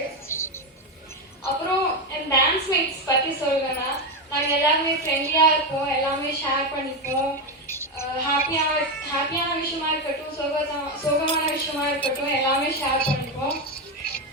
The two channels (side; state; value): both; normal; correlation 0.11